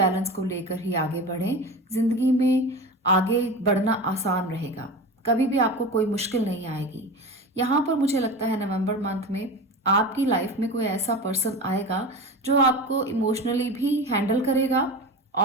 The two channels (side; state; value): both; normal; correlation 0.29